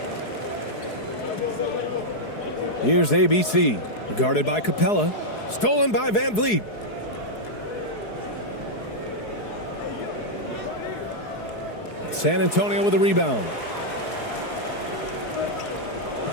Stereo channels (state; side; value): late; right; 4.7 ms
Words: Here's ABC. Guarded by Capella. Stolen by Van Vliet. San Antonio with a rebound.